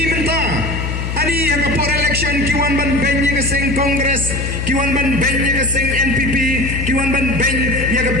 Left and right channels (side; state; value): left; noise; hum, 3 dB below the sound